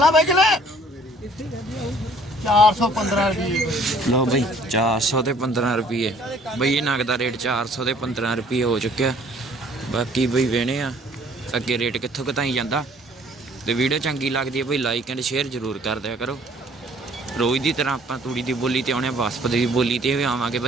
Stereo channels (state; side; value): normal; both; correlation 0.57